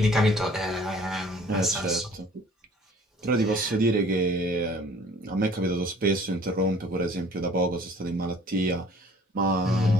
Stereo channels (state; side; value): normal; both; correlation 0.52